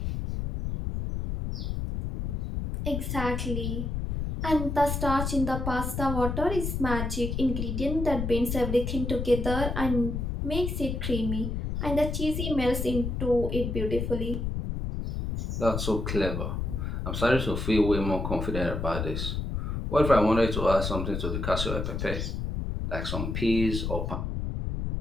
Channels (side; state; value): left; noise; rumble, 3 dB below the sound